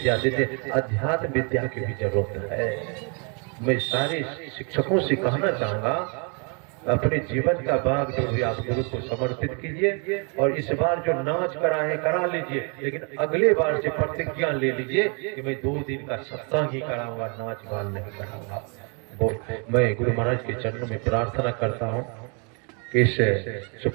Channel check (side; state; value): left; quieter; 35.7 dB